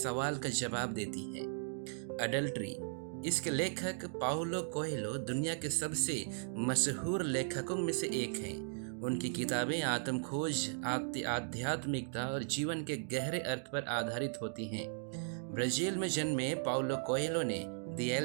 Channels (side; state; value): left; silent; digital silence